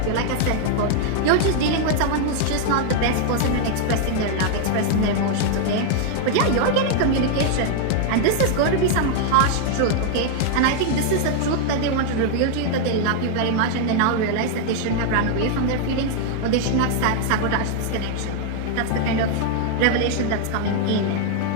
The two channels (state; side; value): different; both; correlation 0.00